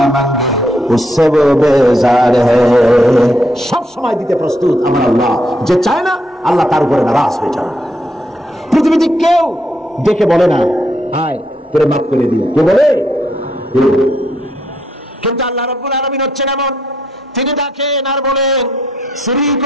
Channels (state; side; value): normal; both; correlation 0.76